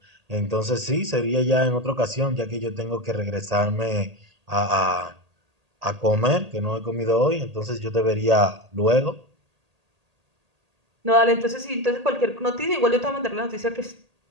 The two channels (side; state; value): left; late; 1.8 ms